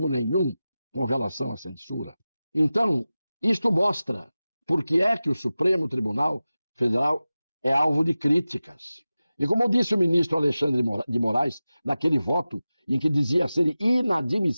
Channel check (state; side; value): inverted; both; correlation -0.96